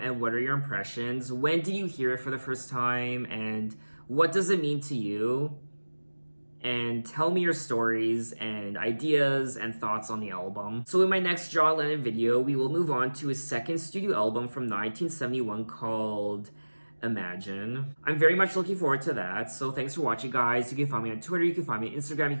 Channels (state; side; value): inverted; both; correlation -1.00